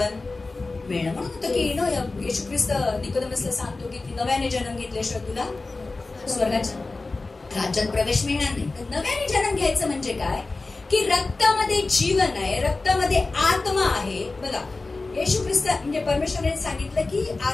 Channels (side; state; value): right; quieter; 3.5 dB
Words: मिळणं. म्हणून होतं की येशू ख्रिस्त निकोदेमसला सांगतो की नव्याने जन्म घेतल्याशिवाय तुला स्वर्गाच्या राज्यात प्रवेश मिळणार नाही. तर नव्याने जन्म घ्यायचं म्हणजे काय? की रक्तामध्ये जीवन आहे, रक्तामध्ये आत्मा आहे. बघा, येशू ख्रिस्त म्हणजे परमेश्वराने सांगितलं की